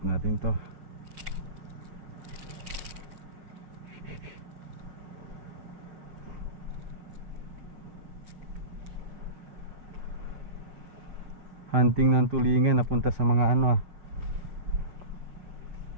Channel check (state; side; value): late; left; 6.1 ms